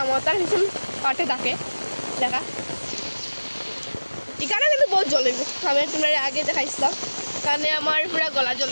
ভীষণ পাঠে থাকে দেখা, এখানে কিন্তু বহুত জ্বলিব। আমি তোমরা আগে দেখাইছিলাম, কারণে আমার পুরা গলা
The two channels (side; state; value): both; inverted; correlation -1.00